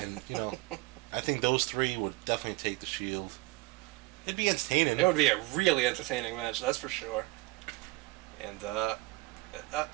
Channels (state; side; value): quieter; left; 21.6 dB